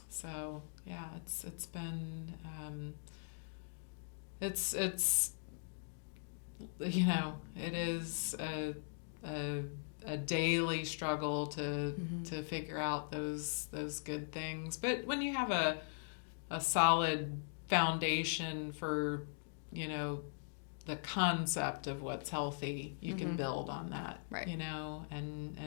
So, yeah, it's been, it's it is a daily struggle to figure out those good things. But when you have a solid foundation for the concept of what's healthy, you can build on that, right?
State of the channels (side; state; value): right; silent; digital silence